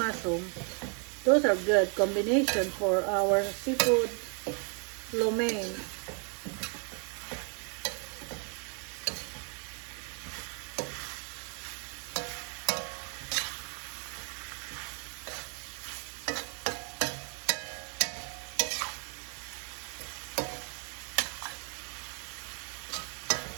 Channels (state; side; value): quieter; left; 38.7 dB